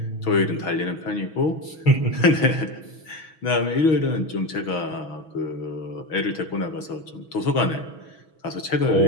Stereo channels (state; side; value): late; right; 6.3 ms